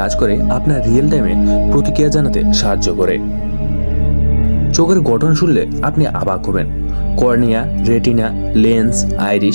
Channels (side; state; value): both; inverted; correlation -1.00